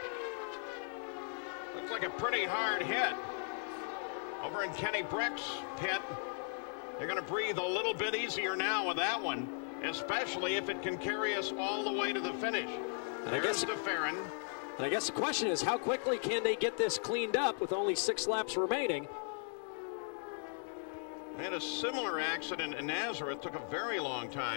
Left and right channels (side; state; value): right; silent; 53 dB below the other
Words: Looks like a pretty hard hit. Over in Kenny Breck's pit, they're going to breathe a little bit easier now with that one, especially if it can carry us all the way to the finish. And I guess DeFerrin. And I guess the question is, how quickly can they get this cleaned up with only 6 laps remaining? They had a similar accident in Nazareth. Took a very long